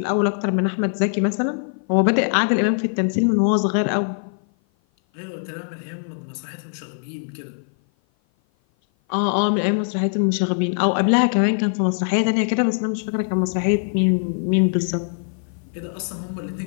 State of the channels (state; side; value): silent; right; 56 dB below the other